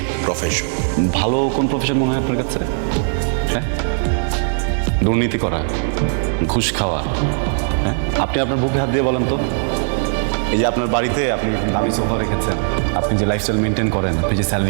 প্রফেশন। ভালো কোন প্রফেশন মনে হয় আপনার কাছে? হ্যাঁ, দুর্নীতি করা, ঘুষ খাওয়া। হ্যাঁ, আপনি আপনার বুকে হাত দিয়ে বলেন তো, এই যে আপনার বাড়িতে আপনি দামি সোফা রেখেছেন, আপনি যে লাইফস্টাইল মেনটেন করেন, আপনি যে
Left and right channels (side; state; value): left; silent; 67 dB below the other